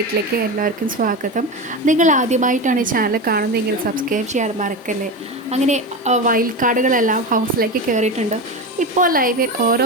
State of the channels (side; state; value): both; normal; correlation 0.21